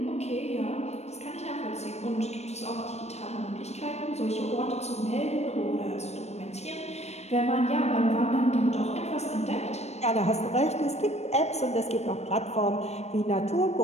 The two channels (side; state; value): right; late; 0.31 ms